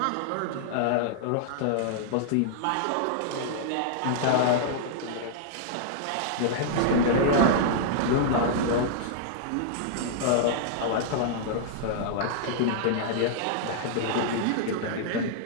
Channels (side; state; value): both; different; correlation -0.01